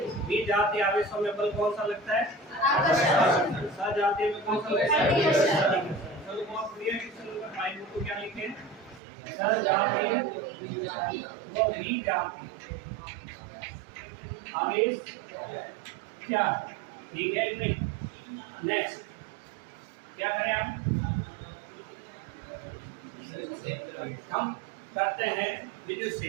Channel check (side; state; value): left; drops out; at 9.0 s